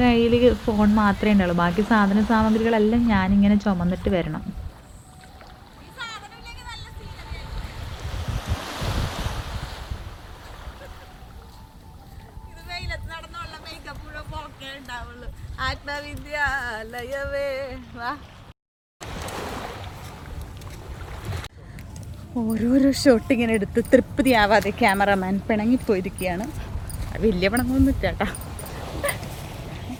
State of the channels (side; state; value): both; identical; correlation 1.00